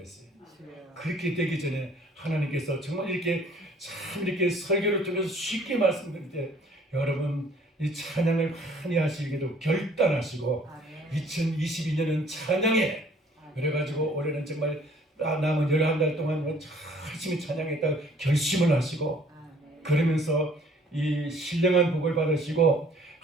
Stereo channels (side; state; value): both; normal; correlation 0.57